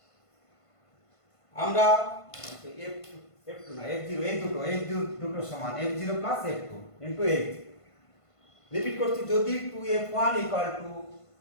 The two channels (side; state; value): right; late; 1.5 ms